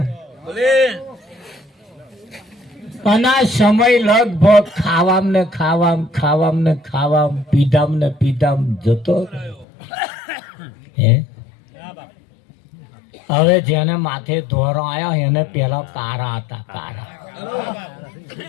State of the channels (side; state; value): right; drops out; at 9.7 s